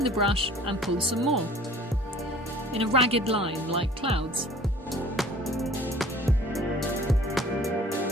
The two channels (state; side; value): normal; both; correlation 0.49